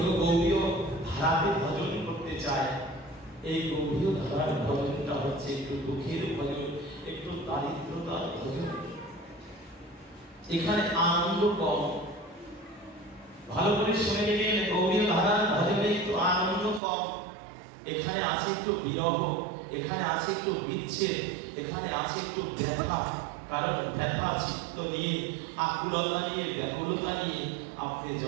গৌরীয় ধারাতে ভজন করতে চায়, এই গৌরীয় ধারার ভজনটা হচ্ছে একটু দুঃখের ভজন, একটু দারিদ্রতার ভজন। এখানে আনন্দ কম। ভালো করে শুনে নেবেন, গৌরীয় ধারার ভজনে একটু আনন্দ কম। এখানে আছে একটু বিরহ, এখানে আছে একটু বিচ্ছেদ, এখানে আছে একটু ব্যথা। কারণ ব্যথা চিত্ত নিয়ে, আকুলতা নিয়ে, ব্যাকুলতা নিয়ে আপনি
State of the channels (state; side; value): drops out; left; at 16.8 s